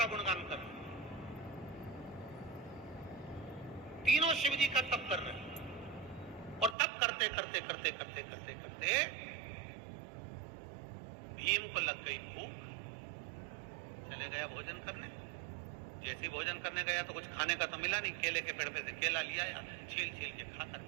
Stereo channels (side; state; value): left; drops out; at 6.8 s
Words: गुणगान कर रहे हैं, तीनों शिव जी का तप कर रहे हैं। और तप करते करते करते करते करते करते भीम को लग गई भूख, चले गया भोजन करने। जैसे भोजन करने गया तो कुछ खाने का तो मिला नहीं, केले के पेड़ पे से केला लिया या छील छील के खाकर